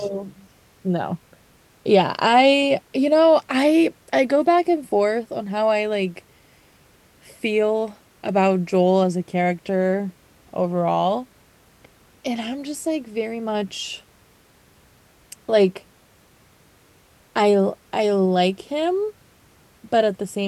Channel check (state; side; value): identical; both; correlation 1.00